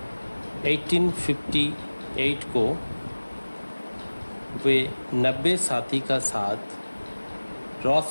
1858 को वे 90 साथी का साथ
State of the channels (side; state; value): both; inverted; correlation -1.00